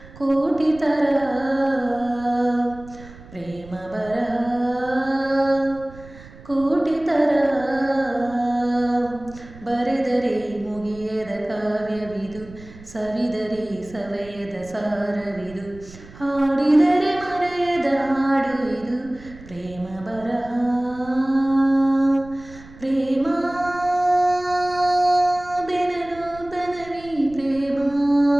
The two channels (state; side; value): noise; right; rumble, 19 dB below the sound